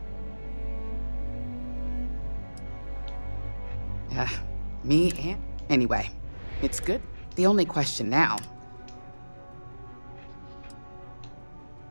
Me and... Anyway, it's good. The only question now...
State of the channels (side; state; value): both; inverted; correlation -1.00